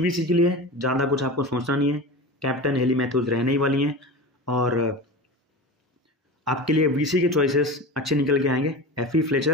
के लिए ज़्यादा कुछ आपको सोचना नहीं है, कैप्टन हेली मैथ्यूज रहने ही वाली हैं, और आपके लिए VC के चॉइसेस अच्छे निकल के आएंगे। FE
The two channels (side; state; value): both; normal; correlation 0.29